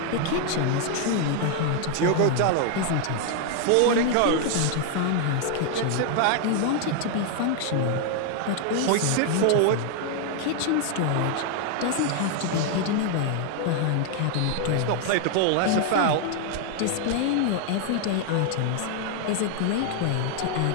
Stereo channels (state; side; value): different; both; correlation 0.00